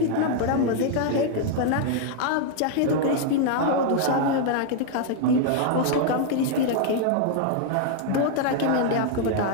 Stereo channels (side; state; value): both; different; correlation 0.00